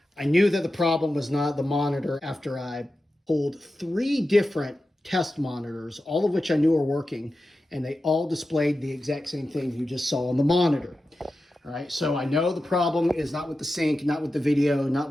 I knew that the problem was not the monitor after I pulled 3 different test monitors, all of which I knew were working, and they all displayed the exact same thing you just saw on the monitor. All right, so I know the problem is not with the sync, not with the video, not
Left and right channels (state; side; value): normal; both; correlation 0.92